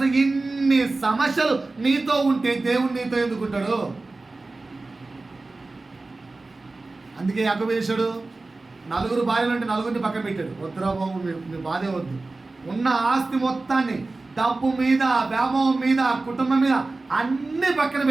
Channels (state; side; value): quieter; left; 3.4 dB